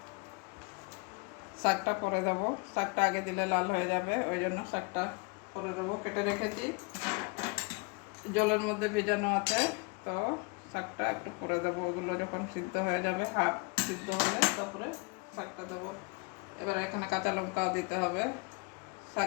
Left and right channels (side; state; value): right; quieter; 30.0 dB